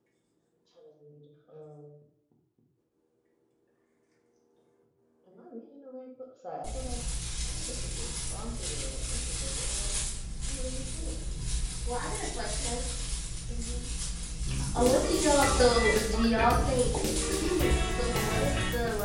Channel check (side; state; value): both; identical; correlation 1.00